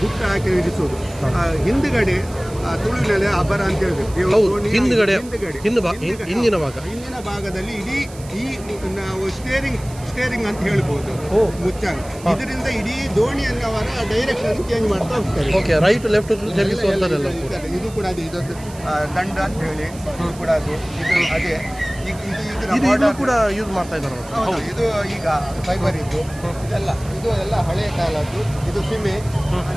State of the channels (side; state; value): right; noise; hiss, 19 dB below the sound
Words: ಹುಟ್ಟು ಹಾಕಿ ಇರಿಸುವುದು. ಹಿಂದುಗಡೆ ತುಳುವಿನಲ್ಲಿ ಅಬರ ಅಂತ ಹೇಳಿದ್ರು. ಹಿಂದಿನ ಭಾಗದಲ್ಲಿ ಇಡೀ ಈ ನಾವು ಸ್ಟೇರಿಂಗ್ ಅಂತ ಹೇಳ್ಬೋದು, ಮುಚ್ಚಂಗ್. ಇದರಿಂದ ಇಡೀ ದೋಣಿಯನ್ನು ಅವರ ಡೈರೆಕ್ಷನ್ ಚೇಂಜ್ ಮಾಡ್ತಾ ಹೋಗ್ತಾರೆ. ರೈಟ್ ಲೆಫ್ಟ್ ಇದು ಕೂಡ ಅದು ಇದೊಂದು ದಂಡ ಅಂತ ಹೇಳಿ ಇದು ಕೂಡ ಅದು ಇದು ಅದೇ ಇದು ಕೂಡ ಯೂಸ್ ಮಾಡ್ತಾ ಇದ್ದಾರೆ. ಇದು ಈಗ ಫೈಬರ್ ಇದು ಇದು ಎಲ್ಲ ಹಳೆಯ ಕಾಲದ್ದು. ಇದು ಸೀಮೆ,